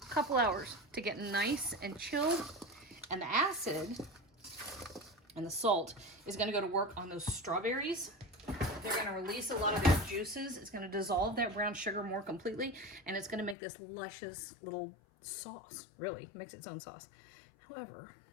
couple hours to get nice and chilled. And the acid and the salt is gonna go to work on those strawberries. They're gonna release a lot of their juices. It's gonna dissolve that brown sugar more completely, and it's gonna make this luscious little sauce. Really, makes its own sauce. However,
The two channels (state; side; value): drops out; right; at 13.6 s